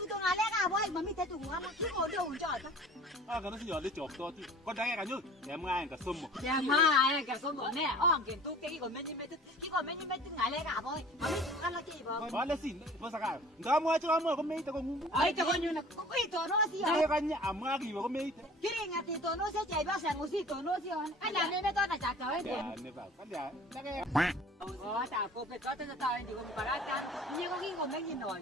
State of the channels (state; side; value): normal; both; correlation 0.46